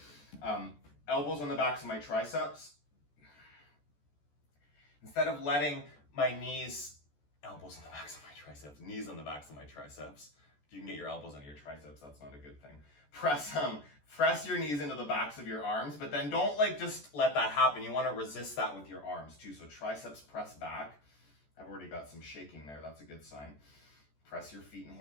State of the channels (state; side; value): late; right; 14 ms